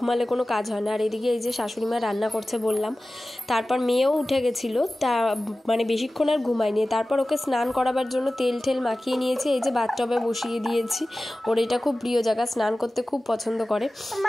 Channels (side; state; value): both; normal; correlation 0.96